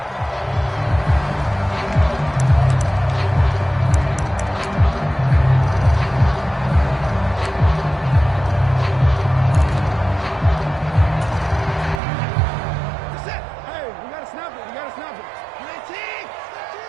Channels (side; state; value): left; drops out; at 12.0 s